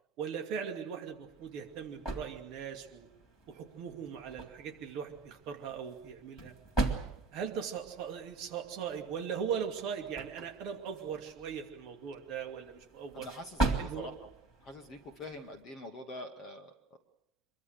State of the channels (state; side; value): quieter; left; 4.1 dB